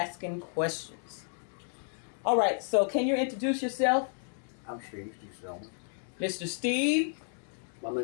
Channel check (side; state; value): right; silent; digital silence